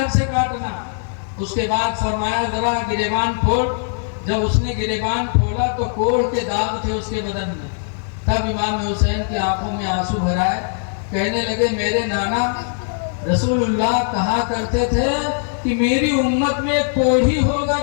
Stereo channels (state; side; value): silent; right; 60 dB below the other